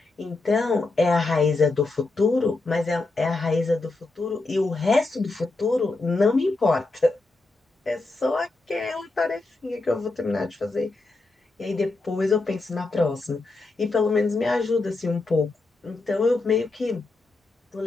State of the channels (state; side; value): quieter; right; 3.3 dB